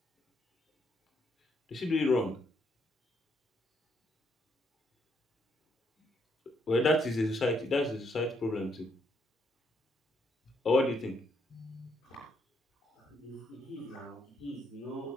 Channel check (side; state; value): both; normal; correlation 0.74